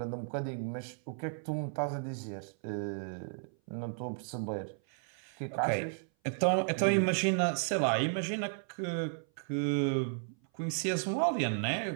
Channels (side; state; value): left; silent; 55 dB below the other